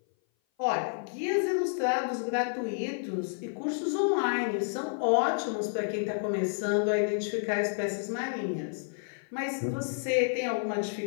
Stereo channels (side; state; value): right; silent; 56 dB below the other